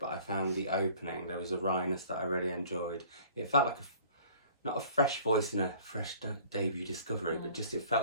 I found the opening, there was a wryness that I really enjoyed. It felt like not a fresh voice in a fresh debut discovery, but just it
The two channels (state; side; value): inverted; both; correlation -0.50